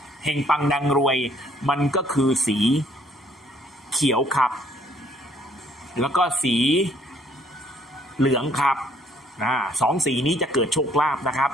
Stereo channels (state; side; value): normal; both; correlation 0.63